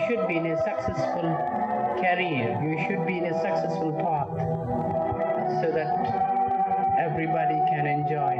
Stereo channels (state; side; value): identical; both; correlation 1.00